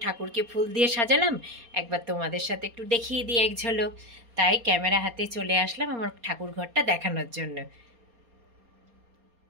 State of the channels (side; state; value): left; late; 4.3 ms